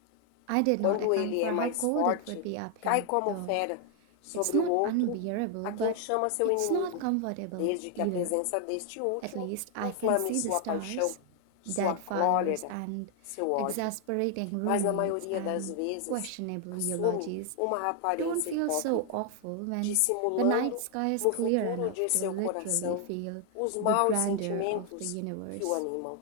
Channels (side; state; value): both; different; correlation 0.00